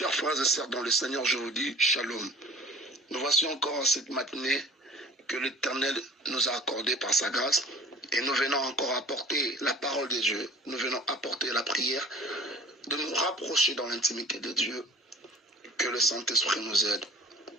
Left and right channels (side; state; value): both; normal; correlation 0.47